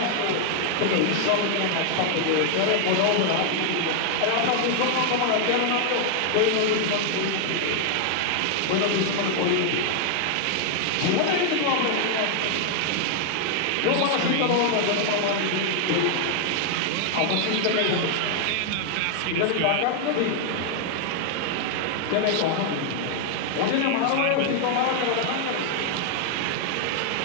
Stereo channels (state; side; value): different; both; correlation 0.00